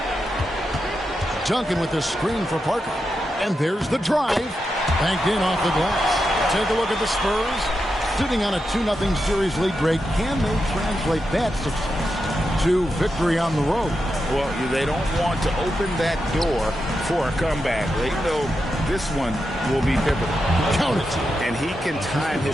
Duncan with the screen for Parker. And there's the drive. Banked in off the glass. Take a look at the Spurs. Sitting on a 2-0 series lead break. Can they translate that success to victory on the road? Well, they don't want to open that door for a comeback. They know this one will be pivotal. Count it. And he can time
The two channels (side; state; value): both; normal; correlation 0.87